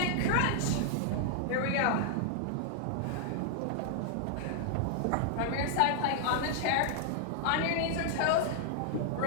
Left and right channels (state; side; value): different; both; correlation -0.01